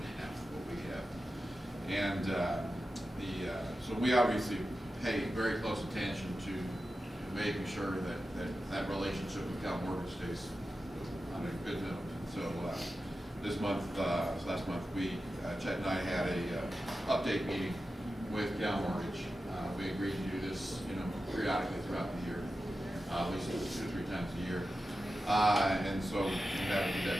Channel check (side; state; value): both; normal; correlation 0.92